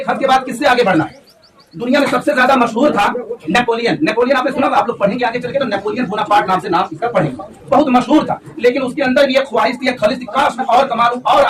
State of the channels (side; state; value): both; identical; correlation 1.00